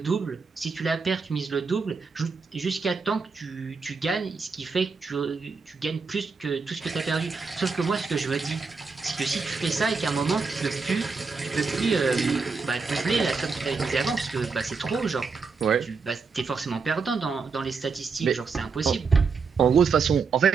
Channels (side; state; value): left; quieter; 4.9 dB